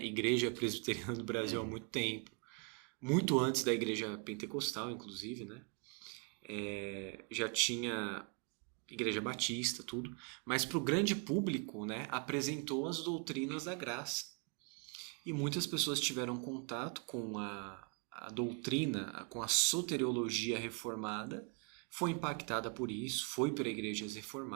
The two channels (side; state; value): left; quieter; 35.6 dB